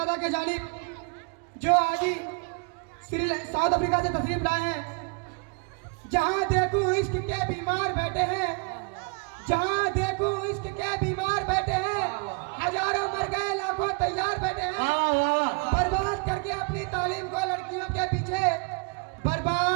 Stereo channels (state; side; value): quieter; left; 34.6 dB